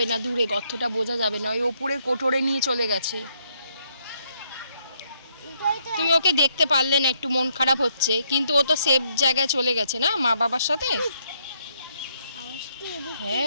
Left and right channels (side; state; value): both; inverted; correlation -0.73